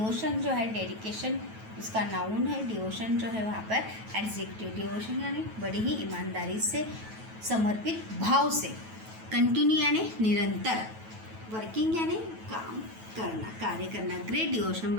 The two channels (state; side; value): late; left; 9.2 ms